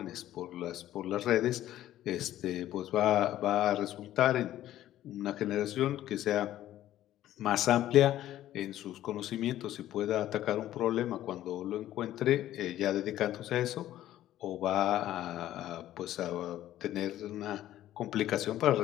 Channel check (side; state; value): right; quieter; 13.2 dB